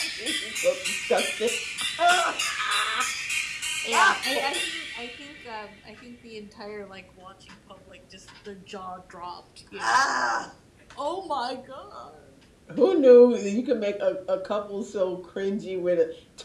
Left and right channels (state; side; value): identical; both; correlation 1.00